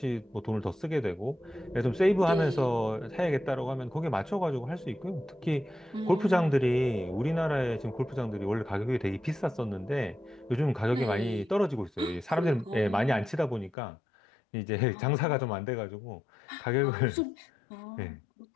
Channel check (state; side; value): drops out; right; at 13.7 s